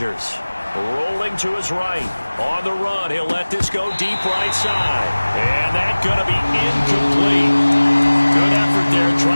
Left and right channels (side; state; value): both; inverted; correlation -1.00